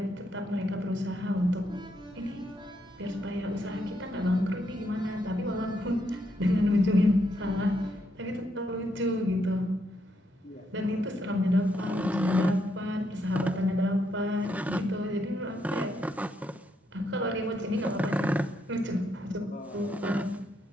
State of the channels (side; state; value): both; normal; correlation 0.77